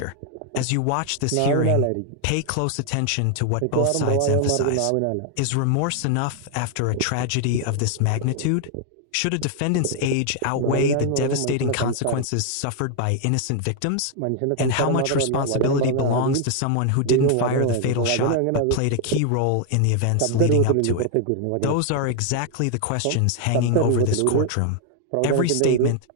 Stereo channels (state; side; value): different; both; correlation 0.00